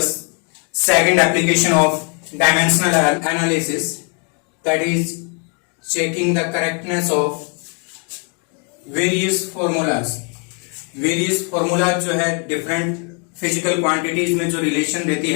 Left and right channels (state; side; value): quieter; right; 38.5 dB